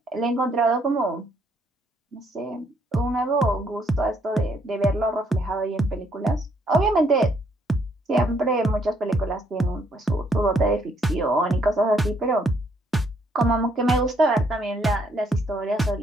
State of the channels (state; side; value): normal; both; correlation 0.70